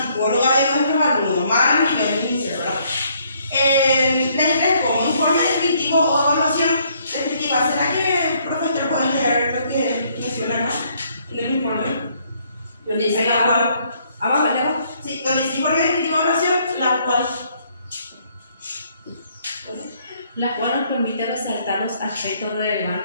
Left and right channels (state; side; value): inverted; both; correlation -0.67